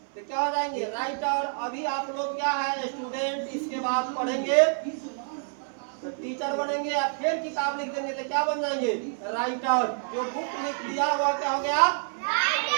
क्या हो जाएंगे? राइटर। अभी आप लोग क्या है? स्टूडेंट। इसके बाद पढ़ेंगे तो टीचर बनेंगे, या फिर किताब लिख देंगे तो क्या बन जाएंगे? राइटर। जो बुक लिख दिया हुआ क्या हो गया?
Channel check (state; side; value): silent; left; 59 dB below the other